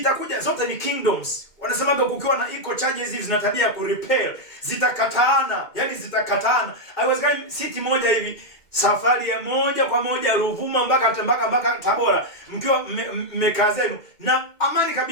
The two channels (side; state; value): right; late; 2.1 ms